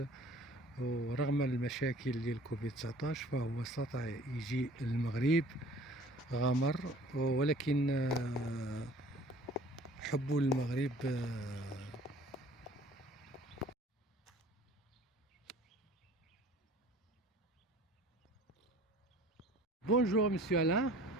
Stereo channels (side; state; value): both; normal; correlation 0.50